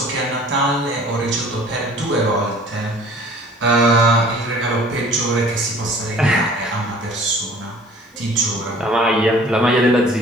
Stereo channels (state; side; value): normal; both; correlation 0.50